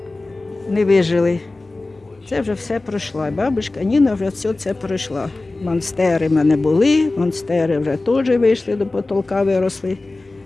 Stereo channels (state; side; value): quieter; right; 3.1 dB